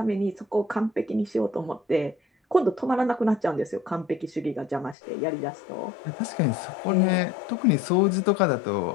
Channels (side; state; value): right; drops out; at 5.0 s